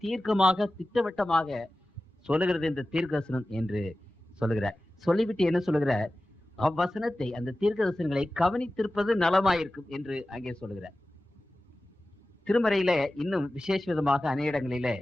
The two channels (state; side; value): normal; both; correlation 0.95